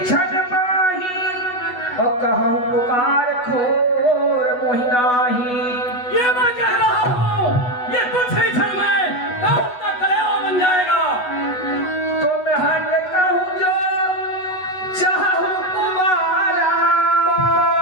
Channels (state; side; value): late; right; 8.1 ms